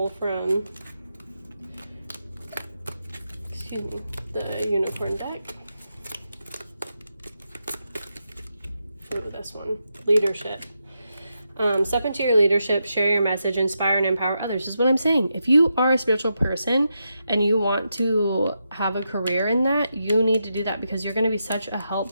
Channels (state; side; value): inverted; both; correlation -0.85